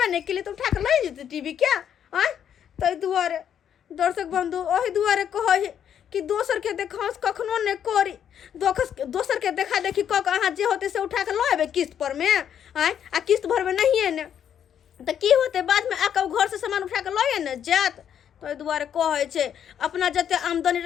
नहीं के लिए तो उठा के ले जेते टीवी क्या आय तै दुआरे दर्शक बंधु ओही दुआरे कहै कि दोसर के देखास कखनो ने करी दोसर के देखा देखी क के अहाँ जे होते से उठा के लेबे किस्त पर में आय आ किस्त भरबे नहीं है ने त की होते बाद में आके घर से सामान उठा के लए ने जात तो दुआरे कहै छै अपना जते आमदनी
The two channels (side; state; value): right; quieter; 9.0 dB